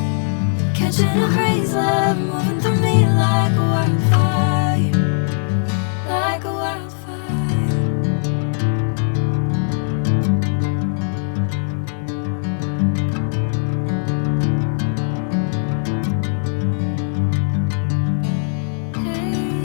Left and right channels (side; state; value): right; silent; digital silence